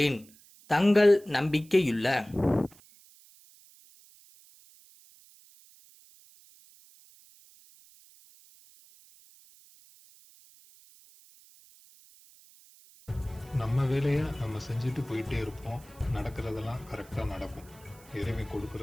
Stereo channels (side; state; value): right; noise; hiss, 25 dB below the sound